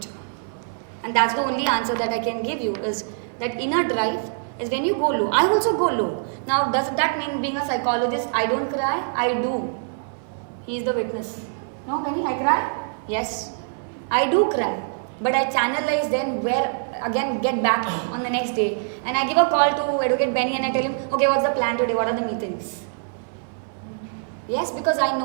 And that's the only answer that I can give you is that inner drive is when you go low. I also go low. Now, does that mean being a psychologist, I don't cry? I do. He is the witness. No, Benny, I cry? Yes. I do cry. But I channelize then where, again, get back on the next day. And I give a call to Advocate Benny and I tell him, okay, what's the plan today? What are the meetings? Yes, because I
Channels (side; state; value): left; silent; digital silence